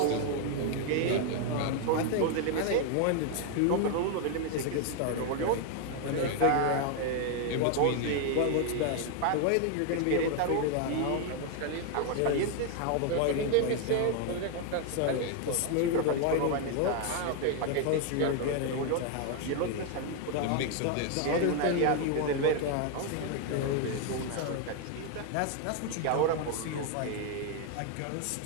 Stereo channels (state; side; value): different; both; correlation 0.00